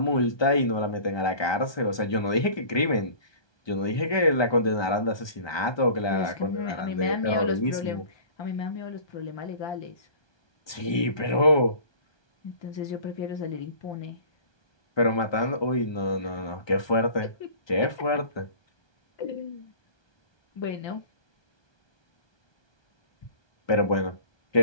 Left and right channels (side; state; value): right; late; 1.2 ms